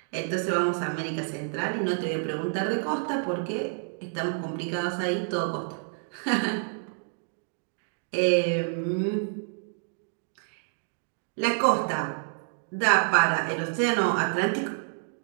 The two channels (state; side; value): silent; left; 59 dB below the other